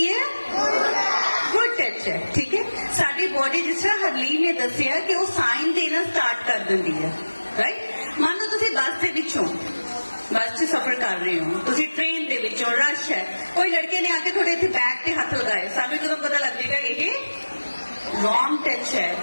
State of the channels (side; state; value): both; inverted; correlation -1.00